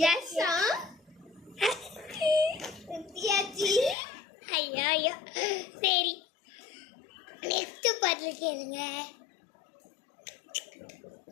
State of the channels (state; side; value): drops out; right; at 4.0 s